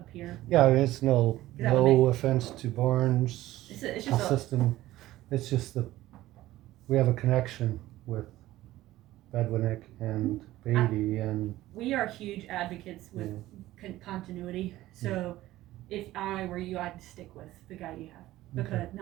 yeah, it's no That would make- offense to Barnes It's just system. It's just we have a connection with Bedwinick and Beatty, and we are huge advocates with continuity. So if I were you, I'd stick with the guy you have, because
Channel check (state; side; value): quieter; left; 15.8 dB